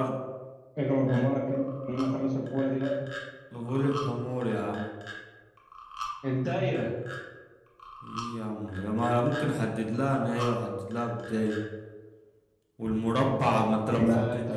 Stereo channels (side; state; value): both; identical; correlation 1.00